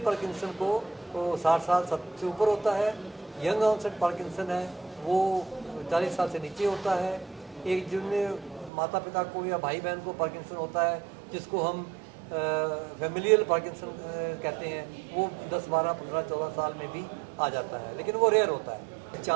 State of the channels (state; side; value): drops out; left; at 8.7 s